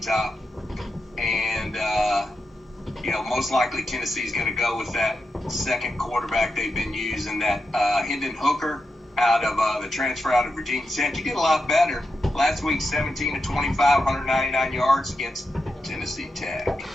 Top. And, most likely Tennessee's going to go with that second quarterback they've been using, that Hendon Hooker out of the transfer out of Virginia Tech. He did a lot better last week, 17 to 25, 199 yards against Tennessee Tech.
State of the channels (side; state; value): both; normal; correlation 0.88